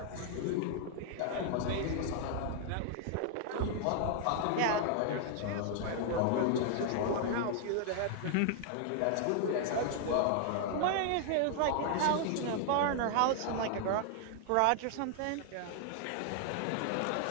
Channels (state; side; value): different; both; correlation 0.00